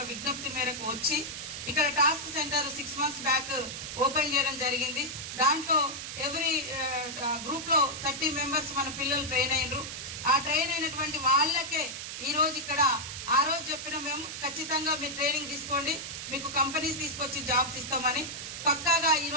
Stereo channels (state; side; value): noise; right; hiss, 7 dB below the sound